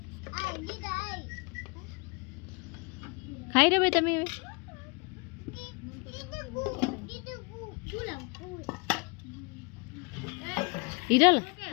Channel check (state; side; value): quieter; right; 31.1 dB